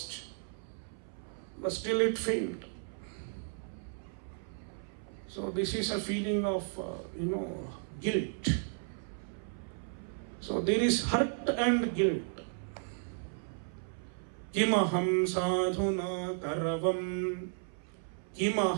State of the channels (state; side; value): silent; left; 55 dB below the other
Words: but still it failed. So this is a feeling of, guilt. So there is hurt and guilt. Kimaham sadhuna karavam,